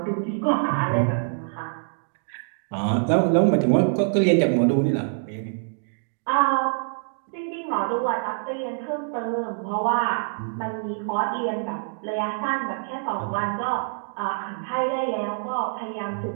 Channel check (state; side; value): silent; left; digital silence